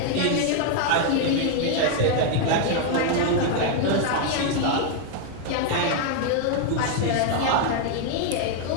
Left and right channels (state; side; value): different; both; correlation 0.00